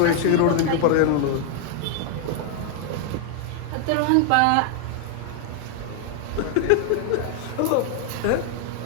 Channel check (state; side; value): different; both; correlation 0.00